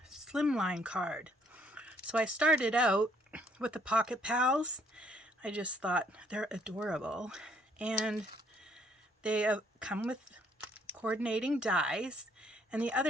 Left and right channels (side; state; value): both; normal; correlation 0.65